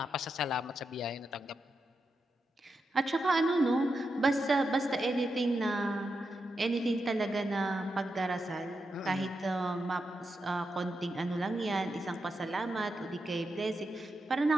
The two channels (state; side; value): normal; both; correlation 0.87